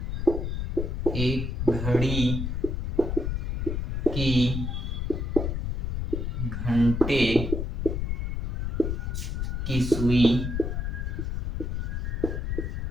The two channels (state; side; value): noise; left; rumble, 1 dB below the sound